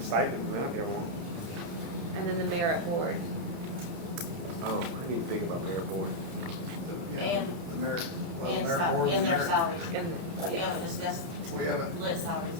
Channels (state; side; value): late; left; 29 ms